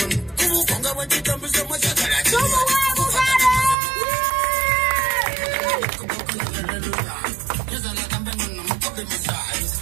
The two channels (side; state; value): left; drops out; at 3.8 s